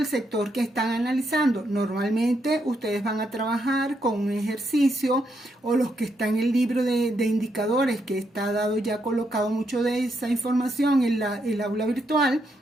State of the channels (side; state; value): both; normal; correlation 0.79